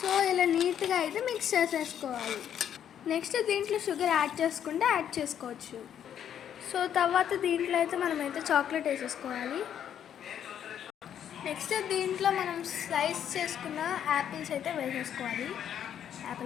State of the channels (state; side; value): quieter; right; 9.5 dB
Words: ఇలా నీట్గా అయితే మిక్స్ చేసేసుకోవాలి. నెక్స్ట్ దీంట్లో షుగర్ యాడ్ చేసుకుంటే యాడ్ చేసుకోవచ్చు. సో తర్వాత దీంట్లో అయితే మనమైతే చాక్లెట్ వేసేసుకోవాలి. నెక్స్ట్ దీంట్లో మనం స్లైస్ చేసుకున్న యాపిల్స్ అయితే వేసేసుకోవాలి,